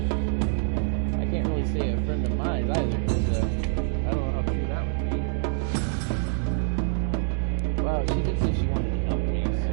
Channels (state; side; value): silent; left; 61 dB below the other